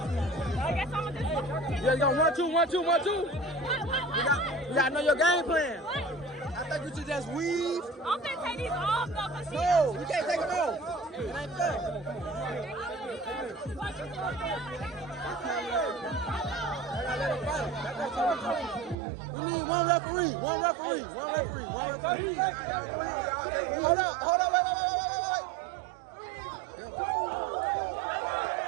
I guess I'm gonna just. Yeah, you got 1, 2, 1, 2, 1, 2. You gotta know your game plan. What? I think you should just weave. I'm gonna take these off though, cause she. No, you can't take them off. It ain't fair. We need one referee. One referee. One referee. One referee. Hold up. Hold up. Wait.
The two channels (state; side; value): drops out; left; at 18.9 s